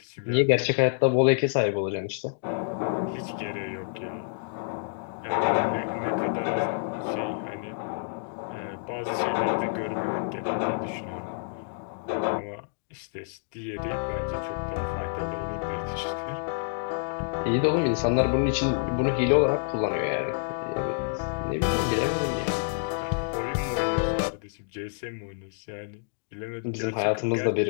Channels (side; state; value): right; silent; digital silence